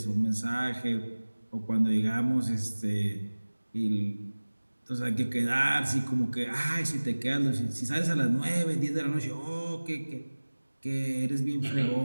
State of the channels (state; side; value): inverted; both; correlation -1.00